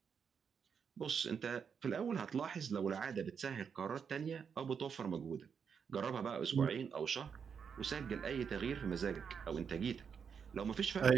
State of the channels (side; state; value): left; quieter; 6.7 dB